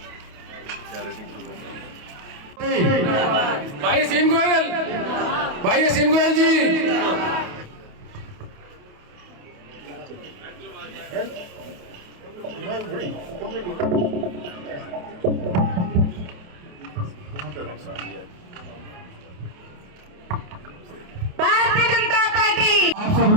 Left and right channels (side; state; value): left; late; 28 ms